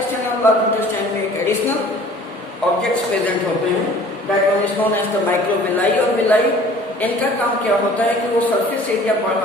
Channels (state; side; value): normal; both; correlation 0.49